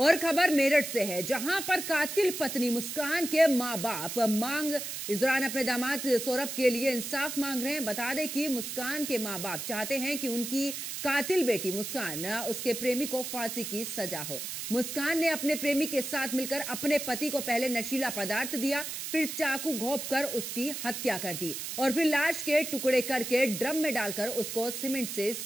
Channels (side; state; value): right; noise; hiss, 6 dB below the sound